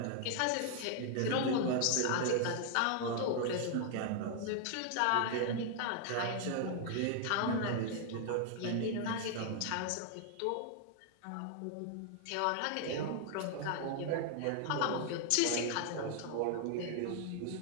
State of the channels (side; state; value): both; different; correlation 0.00